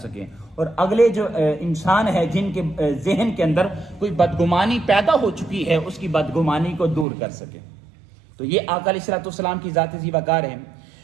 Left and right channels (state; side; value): drops out; left; at 7.1 s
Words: اور اگلے جو انسان ہے جن کے ذہن کے اندر کوئی بدگمانی پیدا ہو چکی ہے اس کی بدگمانی کو دور کر سکیں۔ تو یہ آقا علیہ الصلوۃ والسلام کی ذات ذی وقار ہے۔